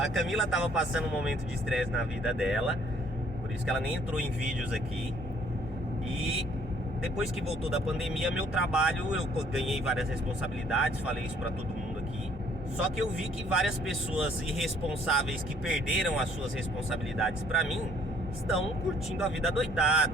Camila tava passando um momento de estresse na vida dela, por isso que ela nem entrou em vídeos aqui. E depois que voltou da pandemia, meu trabalho, eu ganhei várias responsabilidades, falei isso pra todo mundo aqui. Só que eu vi que várias pessoas irresponsáveis que perderam as suas responsabilidades pra mim, estão curtindo a vida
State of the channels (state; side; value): normal; both; correlation 0.62